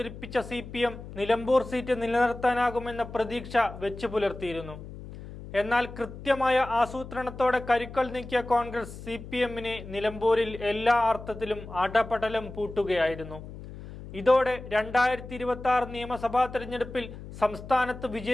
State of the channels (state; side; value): noise; left; hum, 13 dB below the sound